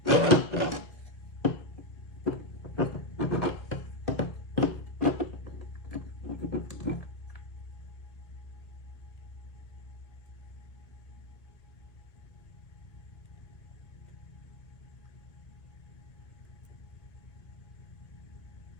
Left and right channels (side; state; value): right; late; 1.4 ms